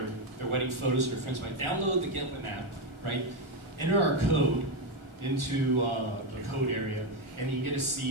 wedding photos with their friends, might download the Get Hsin app, right? Enter our code into the code area, and you get to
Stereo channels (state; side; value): late; left; 1.4 ms